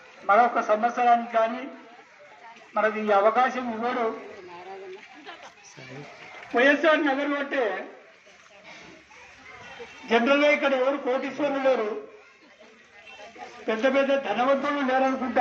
మరొక సంవత్సరానికి కానీ మనకి ఈ అవకాశం ఇవ్వడు. వైఎస్ఆర్ నగర్ అంటే జనరల్గా ఇక్కడ ఎవరు కోటీశ్వరులు లేరు, పెద్ద పెద్ద ధనవంతులు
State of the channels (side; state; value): both; identical; correlation 1.00